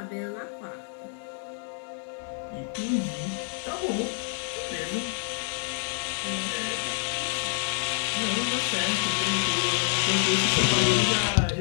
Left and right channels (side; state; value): right; silent; 56 dB below the other